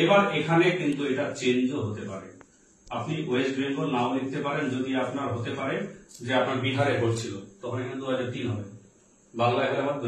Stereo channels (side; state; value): both; identical; correlation 1.00